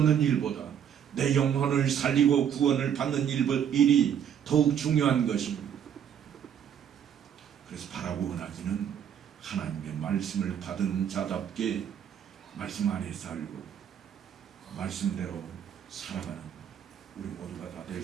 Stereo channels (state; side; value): quieter; left; 8.8 dB